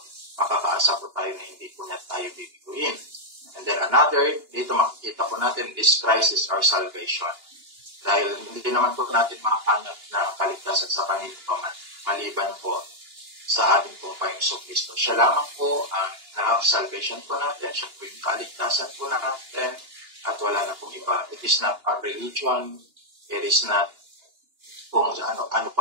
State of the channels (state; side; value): late; left; 2.9 ms